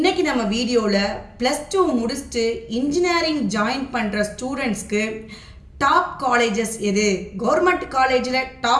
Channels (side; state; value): both; identical; correlation 1.00